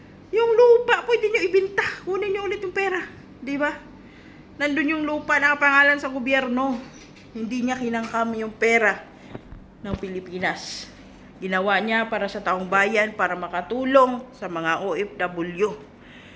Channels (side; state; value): both; identical; correlation 1.00